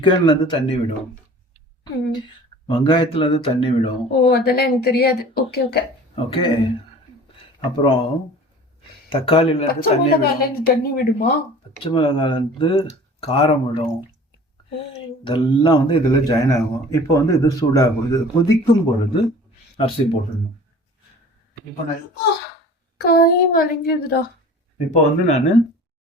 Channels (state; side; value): normal; both; correlation 0.44